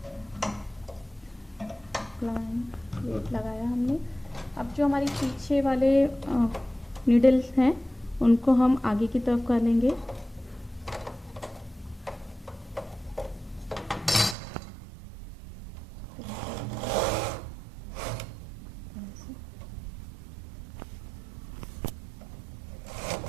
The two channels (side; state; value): left; drops out; at 14.4 s